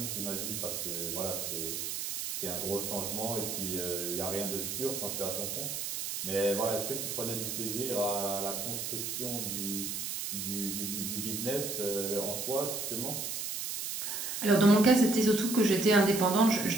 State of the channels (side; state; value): right; noise; hiss, 4 dB below the sound